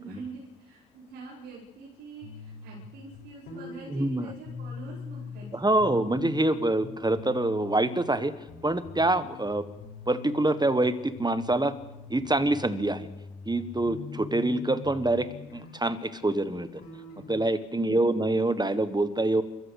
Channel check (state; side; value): normal; both; correlation 0.72